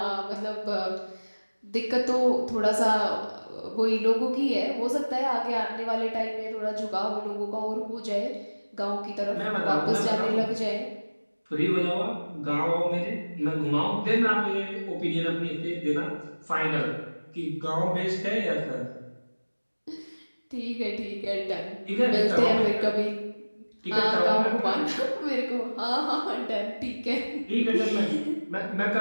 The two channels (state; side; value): inverted; both; correlation -1.00